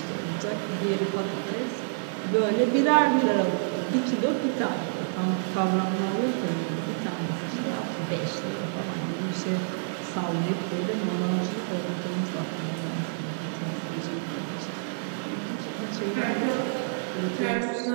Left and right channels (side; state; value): left; silent; digital silence